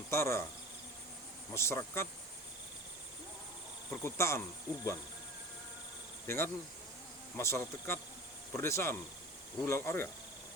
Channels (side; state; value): both; normal; correlation 0.36